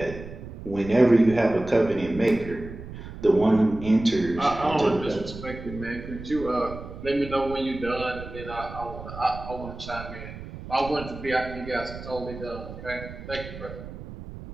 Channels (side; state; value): right; noise; rumble, 12 dB below the sound